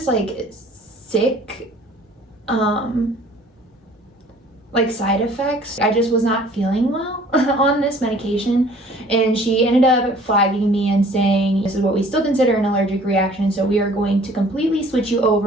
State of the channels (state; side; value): normal; both; correlation 0.53